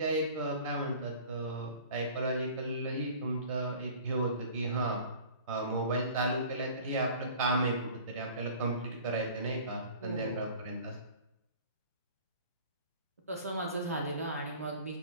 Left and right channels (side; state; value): both; inverted; correlation -0.45